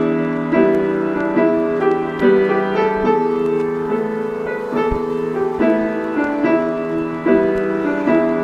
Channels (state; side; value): identical; both; correlation 1.00